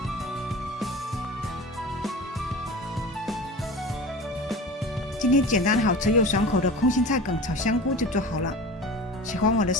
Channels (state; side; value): normal; both; correlation 0.35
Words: 今天简单好吃又爽口的空心菜梗炒香菇就做好了。喜欢我的